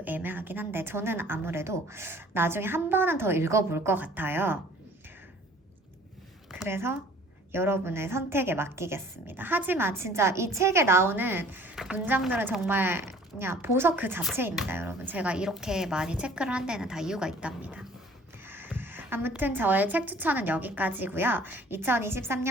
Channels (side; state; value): both; normal; correlation 0.52